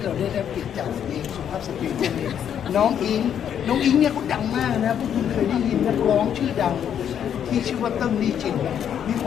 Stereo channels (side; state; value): right; quieter; 9.0 dB